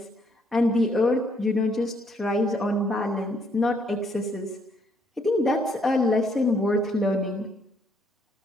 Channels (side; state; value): both; normal; correlation 0.70